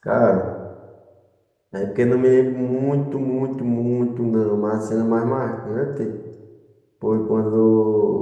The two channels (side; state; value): both; identical; correlation 1.00